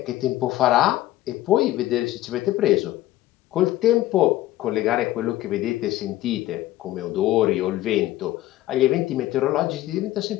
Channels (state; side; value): quieter; right; 15.3 dB